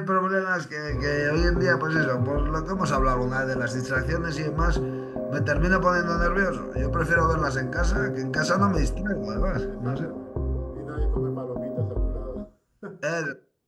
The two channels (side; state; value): both; identical; correlation 1.00